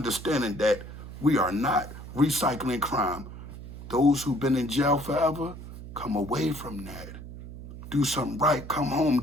that we are not recycling crime. Those who've been in jail forever, come away from that. Do something right. Come home,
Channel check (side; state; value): right; noise; hum, 12 dB below the sound